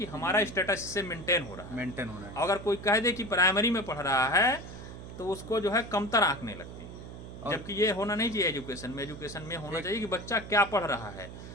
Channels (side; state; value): right; noise; hum, 12 dB below the sound